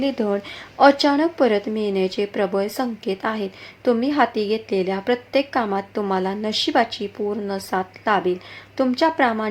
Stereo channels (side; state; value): both; identical; correlation 1.00